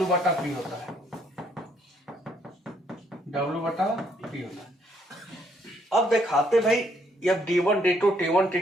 बटा P होता है, W बटा P होता है। अब दिखाते भाई अब D1 D2 T1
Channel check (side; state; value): both; normal; correlation 0.70